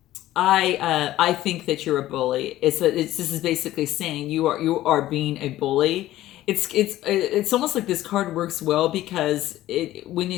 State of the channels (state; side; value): quieter; right; 14.7 dB